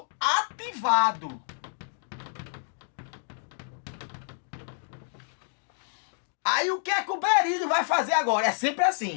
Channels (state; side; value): silent; right; 59 dB below the other